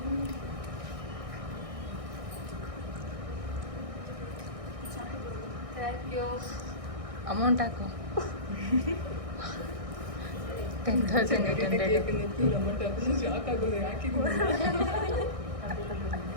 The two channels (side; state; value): left; late; 1.6 ms